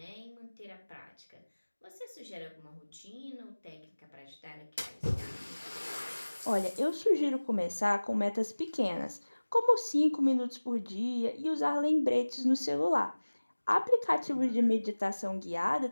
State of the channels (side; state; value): both; inverted; correlation -1.00